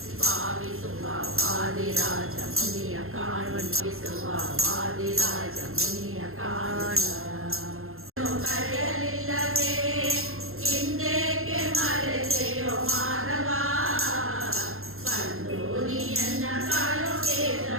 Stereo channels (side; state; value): left; late; 0.61 ms